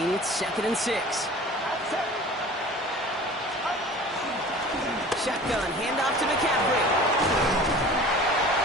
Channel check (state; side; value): normal; both; correlation 0.42